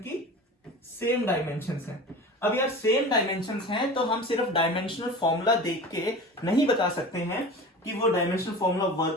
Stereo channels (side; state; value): both; normal; correlation 0.34